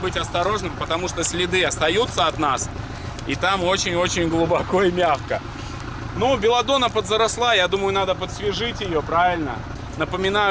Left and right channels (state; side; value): identical; both; correlation 1.00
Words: осторожным, потому что следы остаются от нас. И там очень-очень глубоко и мягко. Ну, Беладонна подзаросла, я думаю, надо подсвежить ее, правильно?